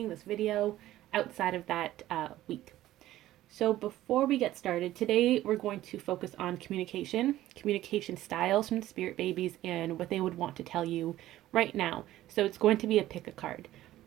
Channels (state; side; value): quieter; left; 14.6 dB